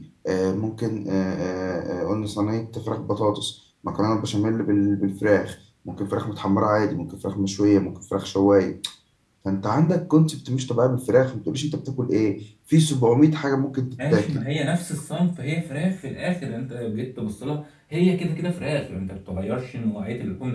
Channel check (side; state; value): both; identical; correlation 1.00